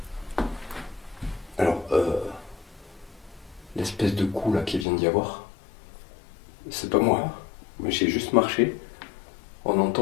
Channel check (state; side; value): drops out; right; at 4.9 s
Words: Alors, l'espèce de coup là qui vient d'y avoir, c'est pas moi. J'ai juste marché. On